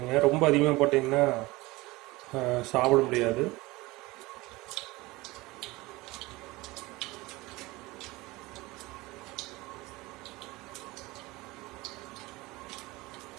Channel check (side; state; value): left; quieter; 21.3 dB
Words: ரொம்ப அதிகமாக போட்டிங்கன்னா சாப்பிட முடியாது.